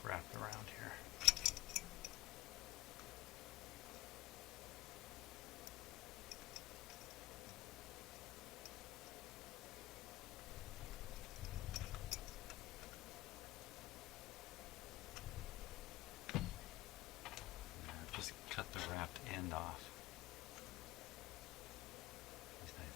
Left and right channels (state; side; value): quieter; right; 18.5 dB